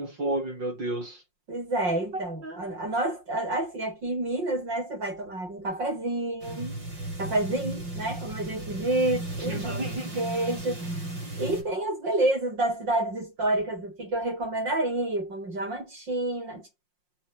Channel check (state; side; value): late; left; 5.6 ms